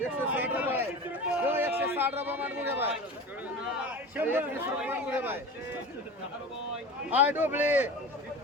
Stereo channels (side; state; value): both; normal; correlation 0.33